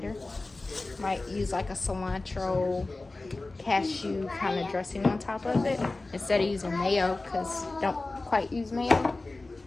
Might use like a cilantro cashew kind of dressing on top of it instead of using mayo, because don't quite use mayo.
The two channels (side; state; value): right; quieter; 3.2 dB